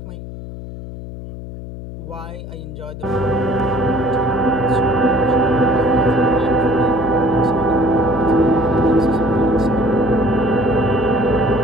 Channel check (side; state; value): left; noise; hum, 11 dB below the sound